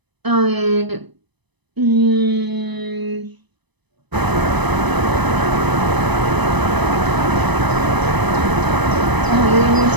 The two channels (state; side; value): late; left; 1.0 ms